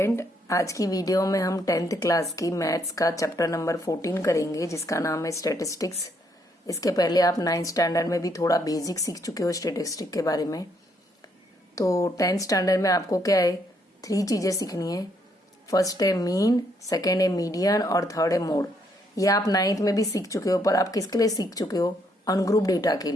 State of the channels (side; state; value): both; normal; correlation 0.72